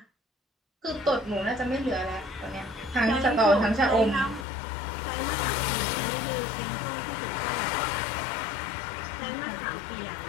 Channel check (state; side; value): drops out; right; at 4.5 s